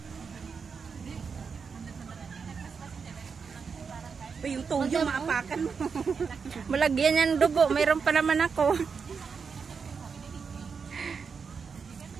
Yung toyo maapakan mo. Malagyan yan dugo, mayroon pa naman ako.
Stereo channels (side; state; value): left; quieter; 5.7 dB